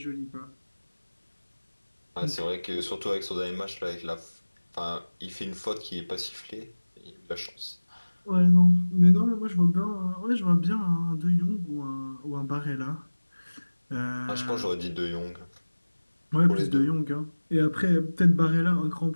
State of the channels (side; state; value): both; inverted; correlation -1.00